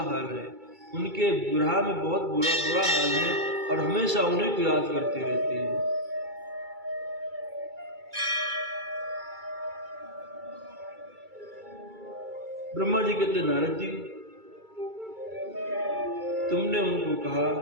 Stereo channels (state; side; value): late; left; 2.3 ms